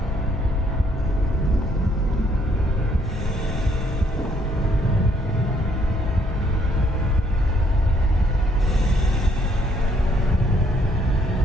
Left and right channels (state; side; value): normal; both; correlation 0.69